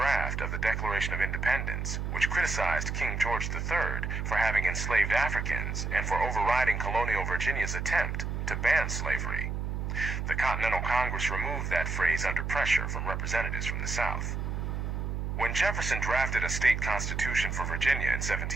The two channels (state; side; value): noise; right; hum, 2 dB below the sound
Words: of the Declaration of Independence, which criticized King George III for having enslaved Africans and for overriding colonial Virginia's attempt to ban slavery. The Continental Congress removed that phrase under pressure from representatives from the South. When Jefferson drafted a state constitution for Virginia in